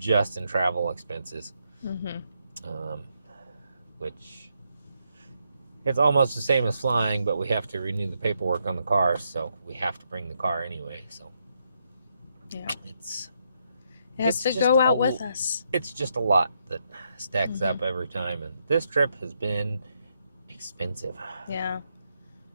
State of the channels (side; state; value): both; inverted; correlation -0.79